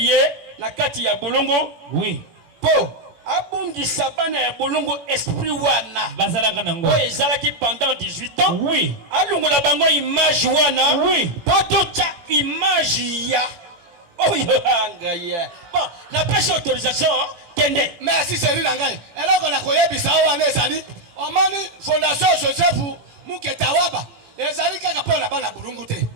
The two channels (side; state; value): left; late; 18 ms